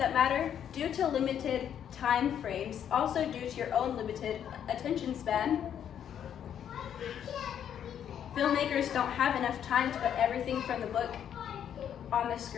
matter? Due to limited time frames, also due to your own limited attention span, filmmakers don't have enough time to put everything from the book on the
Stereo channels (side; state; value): right; quieter; 9.2 dB